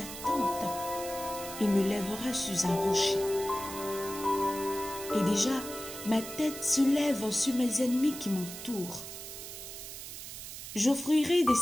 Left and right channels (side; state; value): right; noise; hiss, 10 dB below the sound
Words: tente. Il me lèvera sur un rocher. Et déjà, ma tête se lève sur mes ennemis qui m'entourent. J'offrirai des